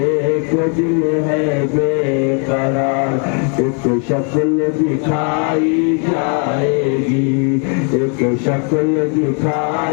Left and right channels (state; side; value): quieter; right; 39.2 dB